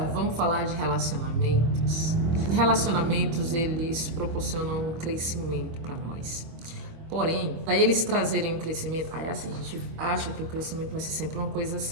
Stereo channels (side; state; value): left; late; 24 ms